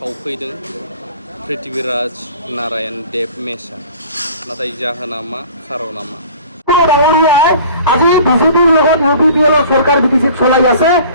पृथ्वीराज नारायण देब मेसा। नाथाय जाहोना मा खारना मा? আজি বিজেপির লগত ইউপিপিএল সরকার বিটিসি চলাই আছে,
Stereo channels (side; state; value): both; inverted; correlation -0.46